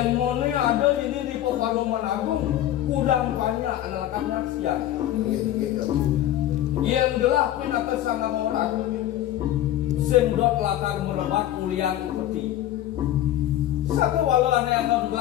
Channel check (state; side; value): quieter; right; 12.8 dB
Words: mone ada di Paman Agung, kudang banyak anak-anaknya siang. Yang gelap pinaka sangat orang, sendot latar melebat kuliah peti. Satu walau ada yang